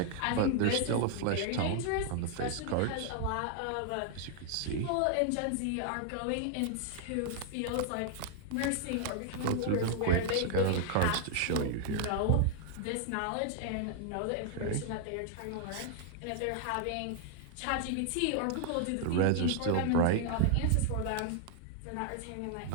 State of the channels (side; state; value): both; different; correlation 0.00